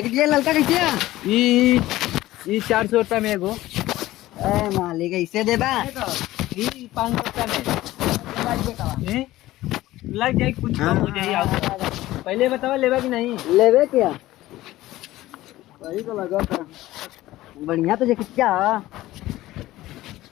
ये लड़का कैसे है? ई ₹400 में एगो। मालिक इससे देबा? ई ₹500 में लग जाए, कुछ कम हो जाए। पहले बताओ लेवा कि नहीं? लेवे क्या? वही तो लगा था। बढ़िया तो जैकेट क्या?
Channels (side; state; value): right; quieter; 16.4 dB